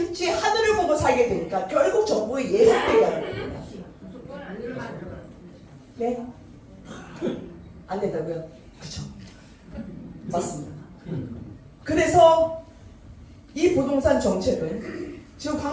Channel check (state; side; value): identical; both; correlation 1.00